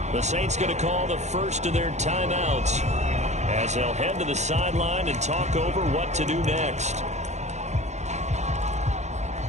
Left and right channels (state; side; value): late; left; 0.33 ms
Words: The Saints going to call the first of their timeouts as they'll head to the sideline and talk over what to do next.